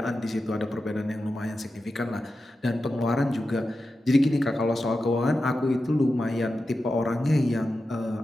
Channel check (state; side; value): normal; both; correlation 0.91